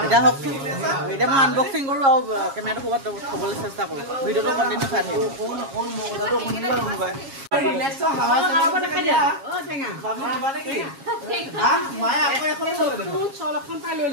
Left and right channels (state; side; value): late; left; 7.3 ms